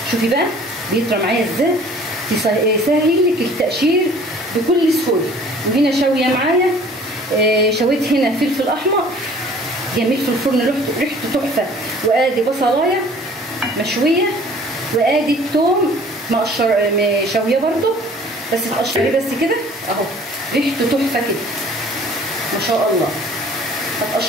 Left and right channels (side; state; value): both; normal; correlation 0.51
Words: شوفي بقى بيطرى معايا ازاي، يسهل لك التقشير بكل سهوله. وهنا شاويه معايا شويت هنا فلفل احمر جميل في الفرن ريحته تحفه، وادي بصلايه مشويه، وادي الثوم شويه برده بس تقشريه بس كده اهو، ريحته تحفه كده ما شاء الله.